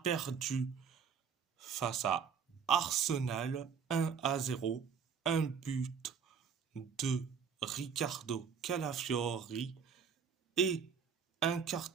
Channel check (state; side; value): quieter; left; 6.7 dB